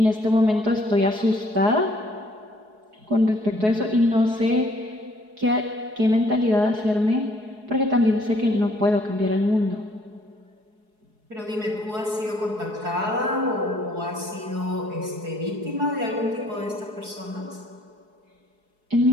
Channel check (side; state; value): left; late; 4.7 ms